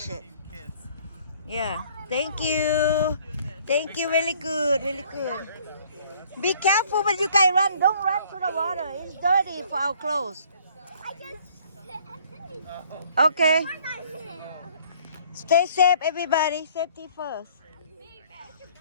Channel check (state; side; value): inverted; both; correlation -0.58